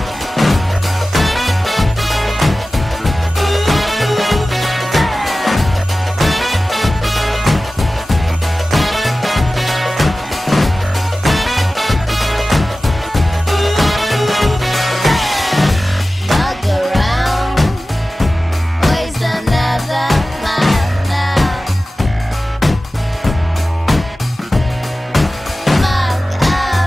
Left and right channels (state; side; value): normal; both; correlation 0.96